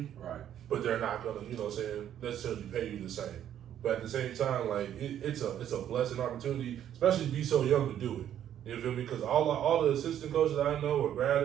Right. but they're not gonna, necessarily pay you the same. But at the same time, it's a blessing opportunity, especially to be so young to do it. You feel me? Because all the assistant coaches I know, or grad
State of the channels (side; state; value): left; quieter; 10.5 dB